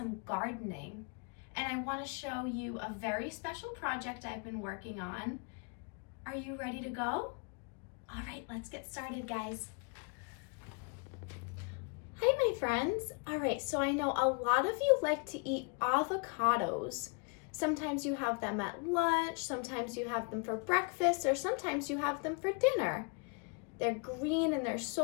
gardening. And I want to show you a very special project I've been working on. Are you ready to go? All right, let's get started, guys. Hi, my friends. All right, so I know a lot of you like to eat avocados. Sometimes you have them at lunch, sometimes you have them for breakfast, or sometimes you have them for dinner. They're green and they're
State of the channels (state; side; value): quieter; right; 36.3 dB